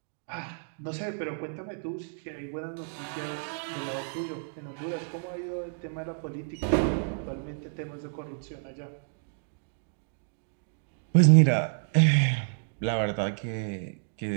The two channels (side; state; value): left; silent; digital silence